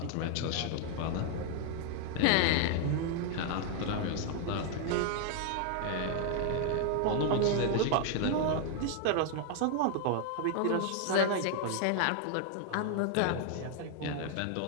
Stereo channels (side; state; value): both; different; correlation 0.00